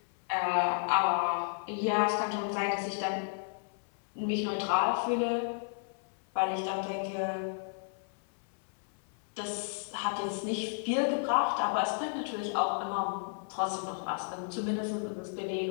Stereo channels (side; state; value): right; silent; 56 dB below the other